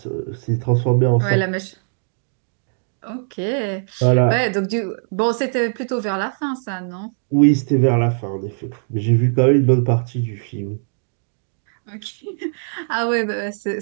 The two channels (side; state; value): left; silent; digital silence